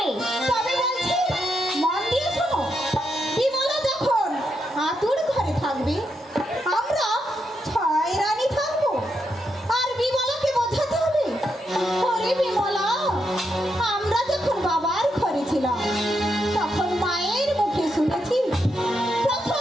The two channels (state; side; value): normal; both; correlation 0.82